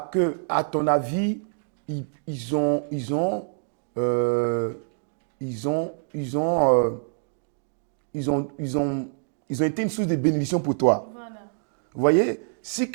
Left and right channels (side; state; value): left; silent; digital silence